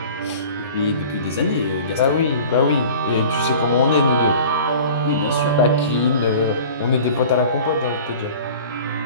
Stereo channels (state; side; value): inverted; both; correlation -0.42